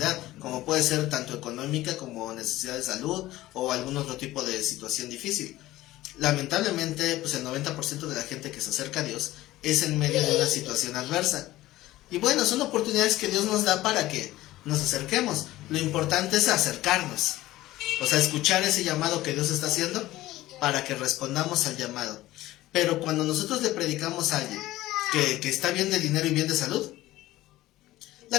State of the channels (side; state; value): right; quieter; 16.4 dB